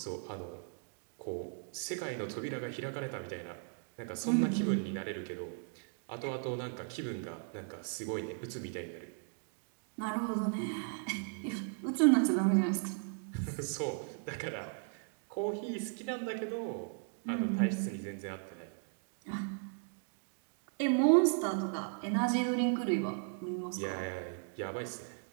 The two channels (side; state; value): left; silent; 53 dB below the other